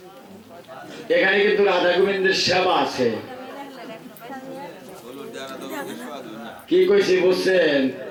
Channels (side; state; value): both; identical; correlation 1.00